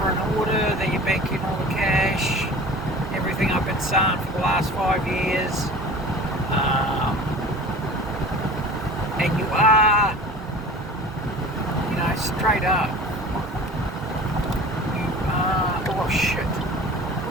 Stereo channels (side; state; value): both; normal; correlation 0.40